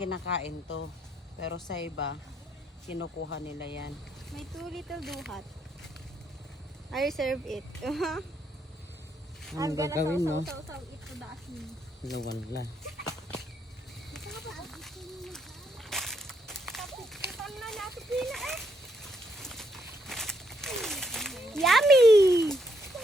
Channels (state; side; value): normal; both; correlation 0.75